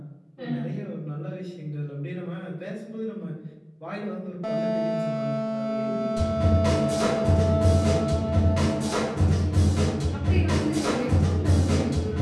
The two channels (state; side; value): identical; both; correlation 1.00